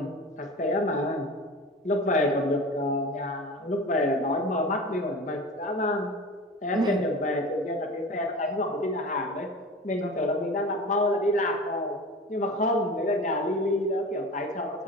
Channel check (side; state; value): both; normal; correlation 0.34